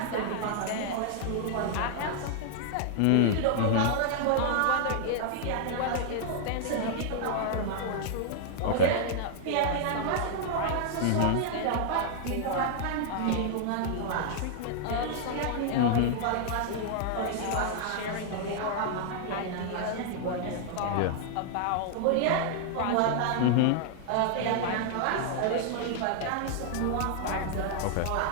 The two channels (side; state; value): both; different; correlation 0.00